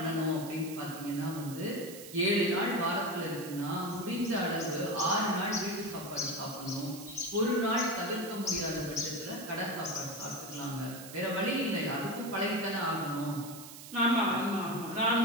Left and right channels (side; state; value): right; noise; hiss, 14 dB below the sound